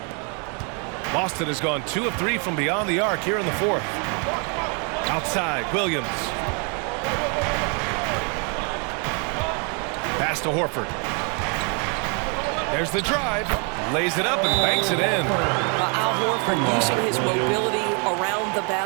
Boston has gone 2 of 3 from beyond the arc here in the fourth. Outside, Williams. Pass to Horford. There's the drive. Lays it up and banks it in. Al Horford using his mobility around the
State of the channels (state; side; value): quieter; left; 36.7 dB